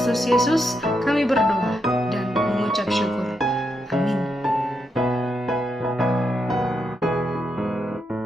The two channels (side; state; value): both; normal; correlation 0.82